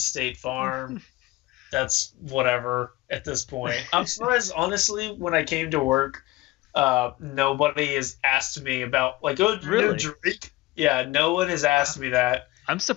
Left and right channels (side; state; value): right; quieter; 19.3 dB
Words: Farm. That's whatever at this point. I'm surprised, honestly, when I came to work, nobody has asked me about, like, really? Drake? Yeah, no one has asked me that. I'm